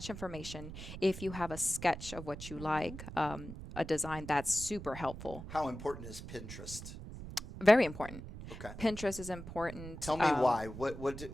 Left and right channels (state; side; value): noise; right; rumble, 11 dB below the sound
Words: information, if you have a sketch of what you like, a design, that's super helpful. How important is Pinterest? Very important. Okay. Pinterest is important. Tell me why.